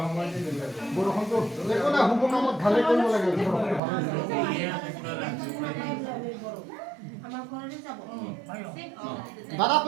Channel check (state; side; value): drops out; left; at 3.8 s